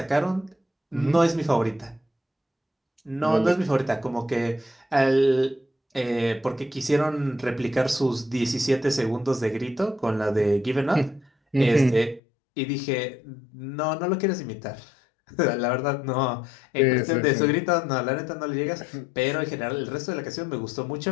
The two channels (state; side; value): drops out; right; at 12.2 s